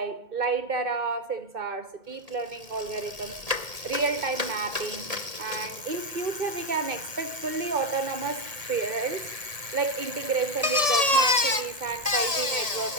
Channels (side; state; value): left; late; 1.7 ms